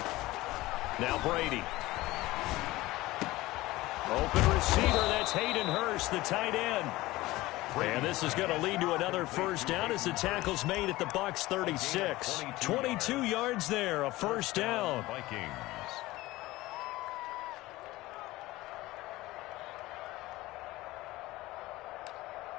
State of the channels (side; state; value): right; quieter; 18.6 dB